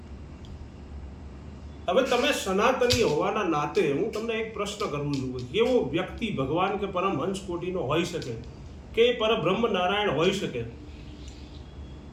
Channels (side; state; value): both; identical; correlation 1.00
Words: હવે તમે સનાતની હોવાના નાતે હું તમને એક પ્રશ્ન કરું છું, કેવો વ્યક્તિ ભગવાન કે પરમહંસ કોટીનો હોઈ શકે કે પરબ્રહ્મ નારાયણ હોઈ શકે?